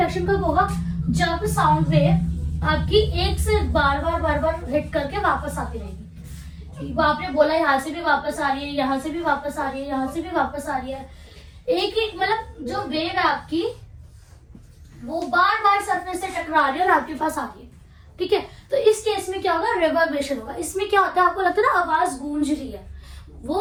कब होगा, जब साउंड वेव आपकी एक से बार बार हिट करके वापस आती रहेगी। आपने बोला यहाँ से भी वापस आ रही है, यहाँ से भी वापस आ रही है, यहाँ से भी वापस आ रही है, एक मतलब जो वेव है आपकी वो बार बार सरफेस से टकरा रही है और आपके पास आ रही है। ठीक है, तो इस केस में क्या होगा, रिवर्बरेशन होगा। इसमें क्या होता है, आपको लगता है ना आवाज गूंज रही है,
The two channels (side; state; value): both; identical; correlation 1.00